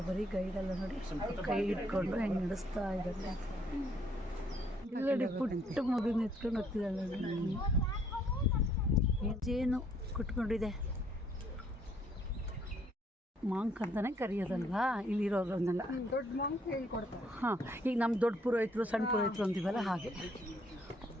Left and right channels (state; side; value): normal; both; correlation 0.66